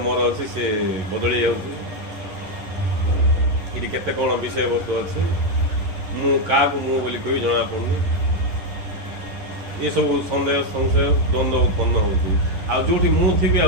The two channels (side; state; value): left; late; 11 ms